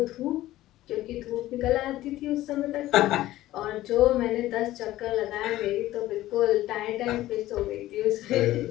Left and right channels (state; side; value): quieter; right; 15.4 dB